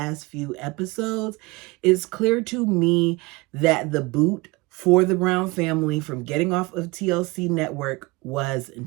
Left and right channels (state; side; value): quieter; left; 23.9 dB